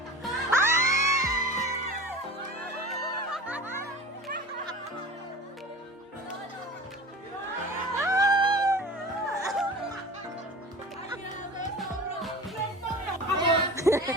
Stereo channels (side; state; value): both; normal; correlation 0.37